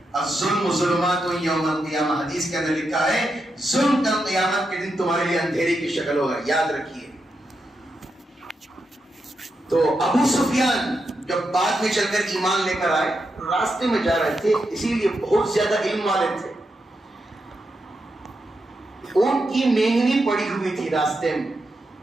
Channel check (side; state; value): both; normal; correlation 0.85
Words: الظلم ظلمات یوم القیامہ, حدیث کے اندر لکھا ہے ظلم کل قیامت کے دن تمہارے لیے اندھیرے کی شکل ہوگا, یاد رکھیے. تو ابو سفیان جب بعد میں چل کر ایمان لے کر آئے, راستے میں جا رہے تھے, اسی لیے بہت زیادہ علم والے تھے. ان کی مینگنی پڑی ہوئی تھی راستے میں,